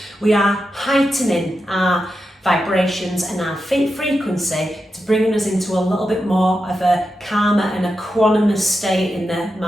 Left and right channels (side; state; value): both; normal; correlation 0.89